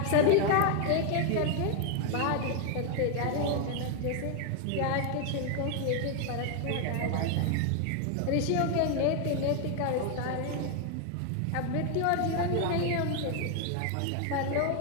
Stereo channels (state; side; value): different; both; correlation 0.00